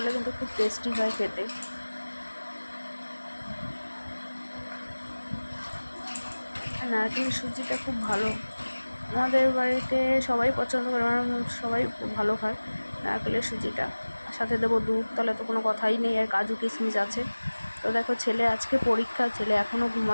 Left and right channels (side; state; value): both; inverted; correlation -1.00